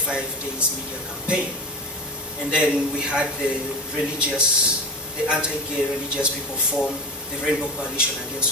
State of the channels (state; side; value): normal; both; correlation 0.25